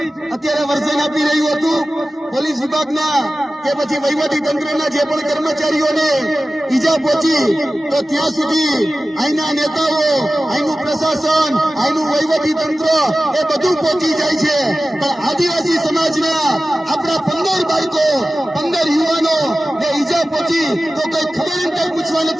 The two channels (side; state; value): both; normal; correlation 0.96